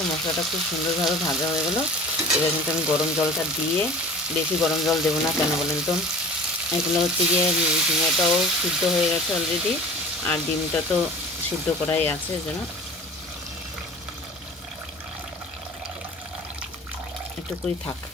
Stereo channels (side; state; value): both; normal; correlation 0.41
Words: মশলাটা খুব সুন্দরভাবে ভাজা হয়ে গেলো। এবার কিন্তু আমি গরম জলটা দিয়ে, বেশি গরম জল দেবো না, কেন বলেন তো, এগুলো হচ্ছে গিয়ে ঝিঙেটাও সিদ্ধ হয়ে গেছে অলরেডি, আর ডিমটা তো সিদ্ধ করাই আছে, যেন একটুকুই থাক।